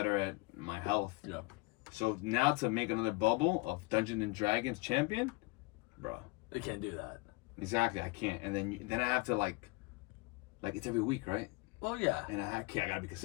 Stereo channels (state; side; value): quieter; right; 24.5 dB